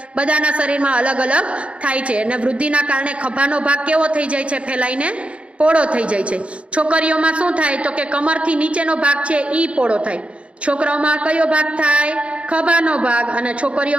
બધાના શરીરમાં અલગ અલગ થાય છે અને વૃદ્ધિના કારણે ખભાનો ભાગ કેવો થઈ જાય છે? ફેલાઈને પોળો થઈ જાય છે. છોકરીઓમાં શું થાય તો કે કમરથી નીચેનો ભાગ છે ઈ પોળો થાય. છોકરાઓમાં કયો ભાગ થાય? ખભાનો ભાગ. અને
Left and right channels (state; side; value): late; left; 0.061 ms